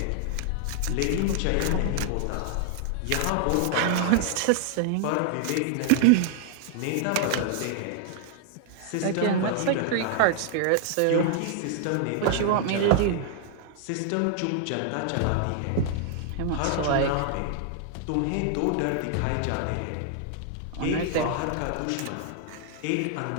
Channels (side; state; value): both; different; correlation 0.00